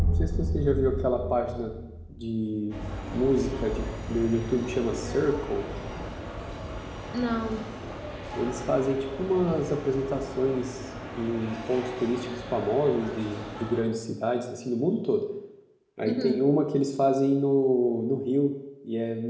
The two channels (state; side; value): identical; both; correlation 1.00